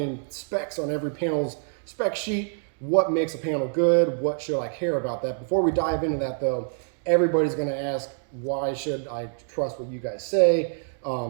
specs on every panel's spec sheet. What makes a panel good? What should I care about that? Before we dive into that though, everybody's going to ask, why should I trust what you guys say?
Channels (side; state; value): left; silent; digital silence